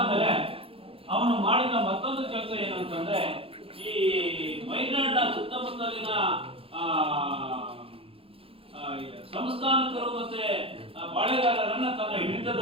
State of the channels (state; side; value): late; left; 0.27 ms